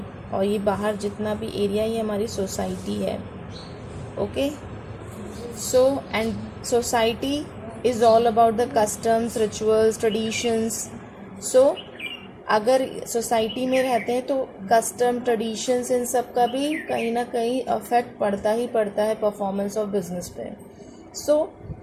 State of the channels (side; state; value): both; identical; correlation 1.00